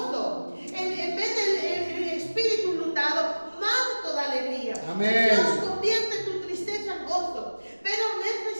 En vez del espíritu lutado, manto de alegría. Amén. Dios convierte tu tristeza en gozo, pero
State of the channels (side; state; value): both; inverted; correlation -1.00